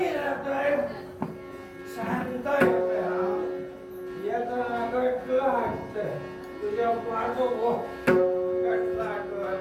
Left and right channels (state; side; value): identical; both; correlation 1.00